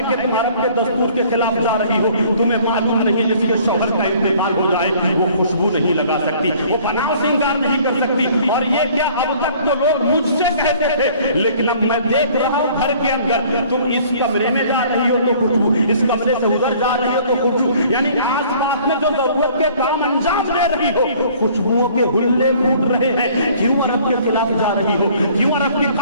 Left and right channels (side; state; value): both; inverted; correlation -0.54